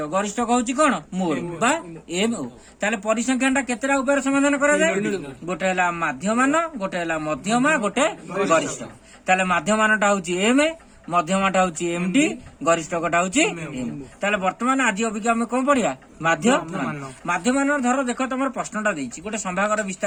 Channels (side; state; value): both; identical; correlation 1.00